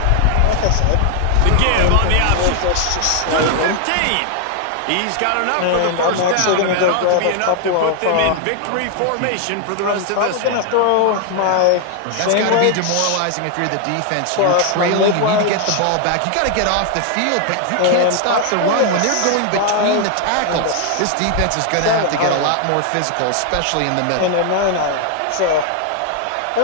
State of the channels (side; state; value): both; different; correlation 0.00